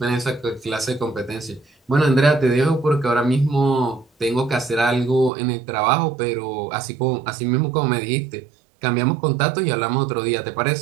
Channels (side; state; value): left; drops out; at 5.3 s